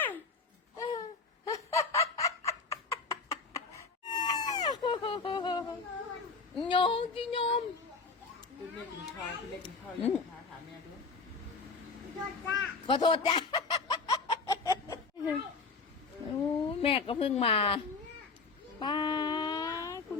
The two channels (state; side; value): quieter; right; 4.3 dB